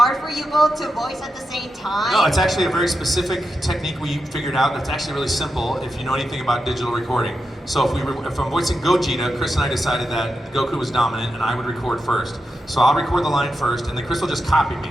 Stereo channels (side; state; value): both; normal; correlation 0.88